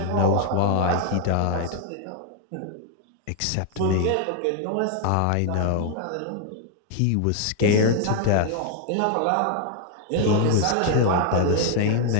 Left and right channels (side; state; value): both; different; correlation 0.00